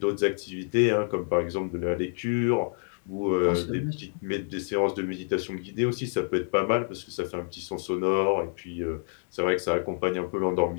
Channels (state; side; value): silent; right; digital silence